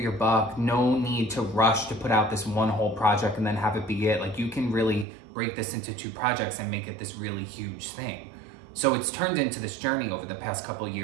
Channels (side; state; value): left; drops out; at 5.1 s